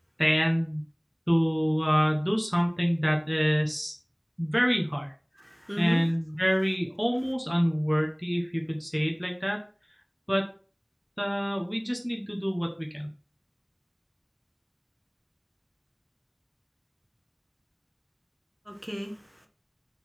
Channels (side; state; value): both; identical; correlation 1.00